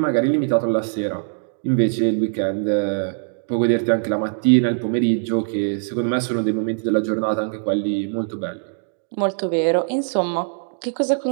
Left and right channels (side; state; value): left; silent; digital silence